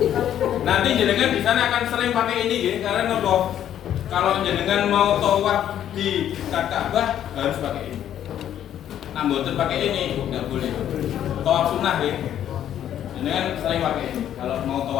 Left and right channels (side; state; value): right; quieter; 10.6 dB